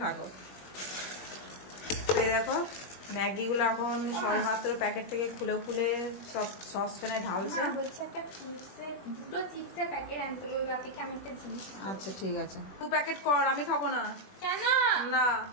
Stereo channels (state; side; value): late; right; 21 ms